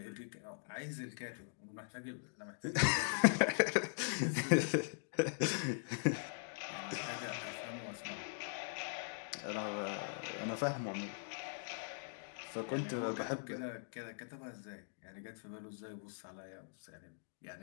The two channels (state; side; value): silent; right; digital silence